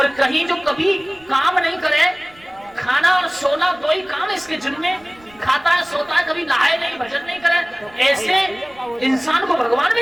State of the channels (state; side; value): noise; right; rumble, 28 dB below the sound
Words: कहीं जो कभी काम नहीं करे, खाना और सोना 2 ही काम इसके जिनमें, खाता है सोता है, कभी नहाए नहीं, भजन नहीं करे, ऐसे इंसान को भगवान